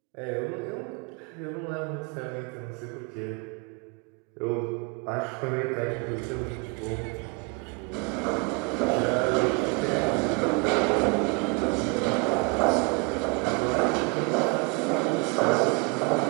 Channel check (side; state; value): left; quieter; 30.5 dB